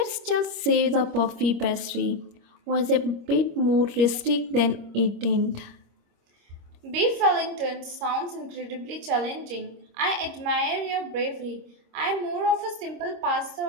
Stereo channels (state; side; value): late; left; 26 ms